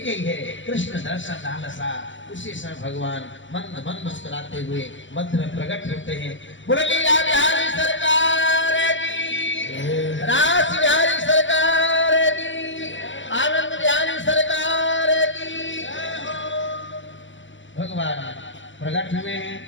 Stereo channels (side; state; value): right; late; 0.55 ms